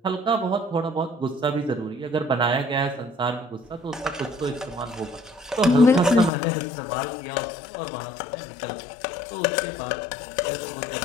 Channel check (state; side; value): drops out; right; at 6.3 s